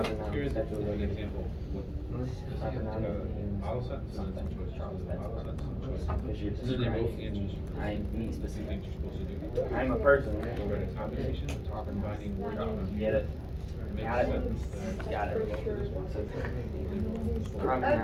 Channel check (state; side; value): identical; both; correlation 1.00